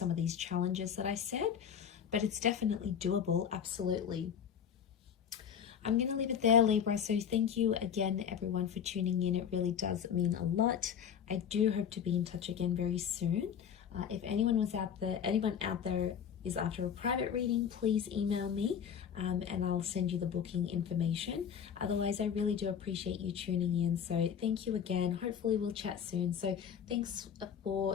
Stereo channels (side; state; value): right; quieter; 8.1 dB